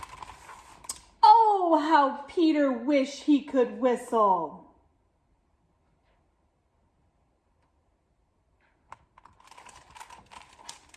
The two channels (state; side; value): identical; both; correlation 1.00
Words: Oh, how Peter wished he could whistle.